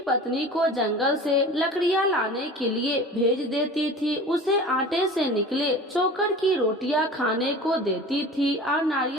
को जंगल से लकड़ियां लाने के लिए भेज देती थी। उसे आटे से निकले चोकर की रोटियां खाने को देती थी और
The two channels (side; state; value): both; normal; correlation 0.38